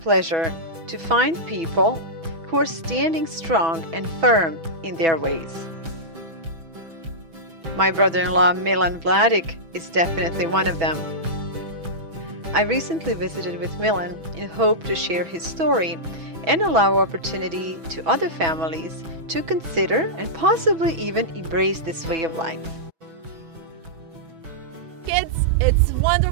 pleasure to find people who are standing strong and firm in their ways. My brother-in-law Milan Vladic is definitely one of them. I recently visited with Milan in hope to share his story and allow opportunity to other families to consider and possibly even embrace this way of life. Kids, it's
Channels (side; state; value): left; late; 6.1 ms